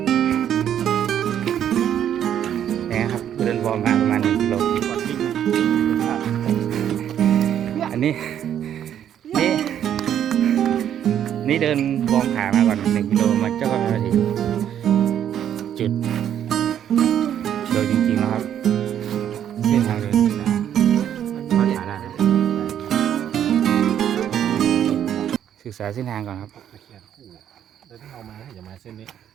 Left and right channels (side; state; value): left; quieter; 10.0 dB